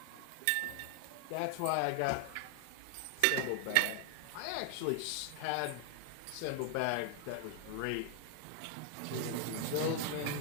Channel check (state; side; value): different; both; correlation 0.00